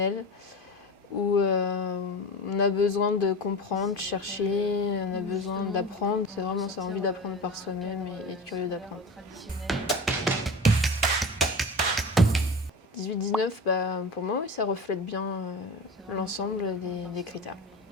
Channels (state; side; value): normal; both; correlation 0.31